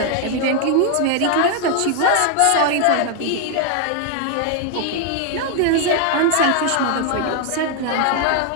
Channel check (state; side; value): different; both; correlation 0.00